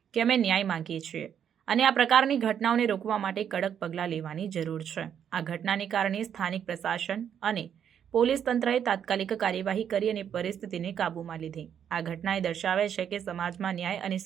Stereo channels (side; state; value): left; quieter; 8.7 dB